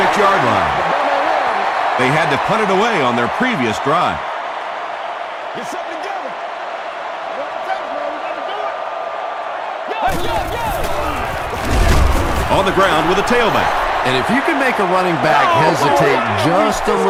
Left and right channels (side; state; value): both; identical; correlation 1.00